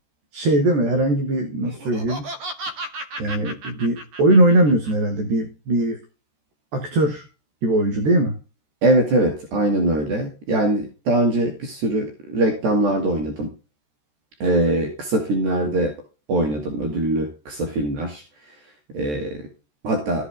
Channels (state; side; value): late; left; 14 ms